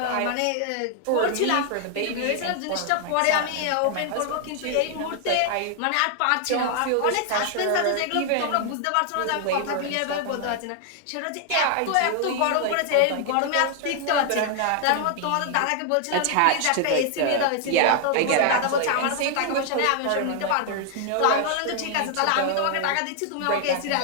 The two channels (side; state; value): both; different; correlation 0.00